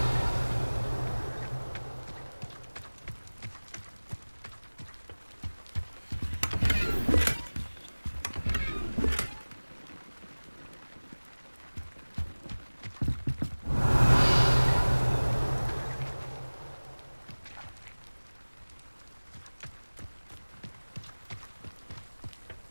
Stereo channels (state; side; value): inverted; both; correlation -1.00